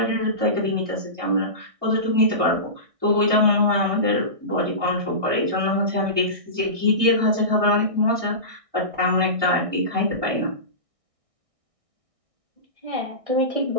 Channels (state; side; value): late; left; 1.6 ms